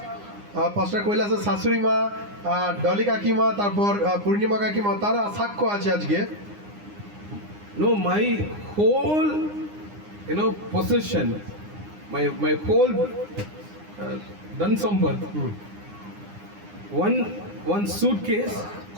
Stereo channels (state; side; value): late; left; 9.8 ms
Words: পাস্টার কৈলাসের শাশুড়ি মা, ডলি কাকিমা, তারপর পূর্ণিমা কাকিমা, তারা সাক্ষ্য আছে আজকে। No, my whole, possession, my whole Dansamba, one suitcase